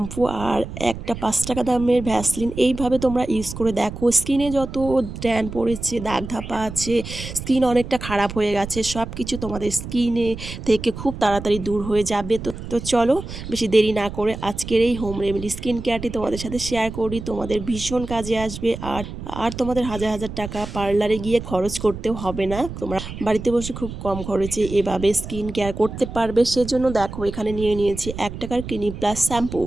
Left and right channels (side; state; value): right; noise; rumble, 10 dB below the sound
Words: আর একটা ৫ টাকা দামের ভ্যাসলিন এইভাবে তোমরা ইউজ করে দেখো। স্কিনে যত ট্যান পড়েছে, দাগ ধাপা আছে, স্কিন অনেকটা খারাপ হয়ে গেছে, সব কিছু তোমাদের স্কিনে থেকে খুব তাড়াতাড়ি দূর হয়ে যাবে। তো চলো বেশি দেরি না করে আজকের এই হোম রেমেডি স্কিন কেয়ারটি তোমাদের সাথে শেয়ার করি। তোমাদের ভীষণ কাজে আসবে আর আর তোমাদের হাজার হাজার টাকা পার্লারে গিয়ে খরচ করতেও হবে না। তোমরা বাড়িতে বসে খুব কম খরচে এভাবে স্কিন কেয়ার করতে পারবে। সেজন্য দেখো এখানে নিয়ে নিয়েছি ১ টাকার ক্লিনিক প্লাস শ্যাম্পু।